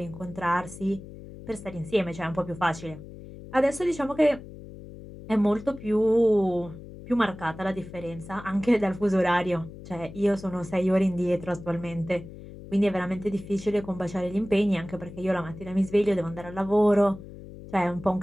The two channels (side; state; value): left; noise; hum, 15 dB below the sound